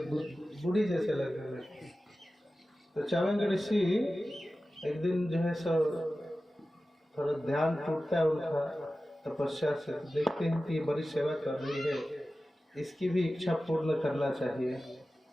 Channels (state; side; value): normal; both; correlation 0.95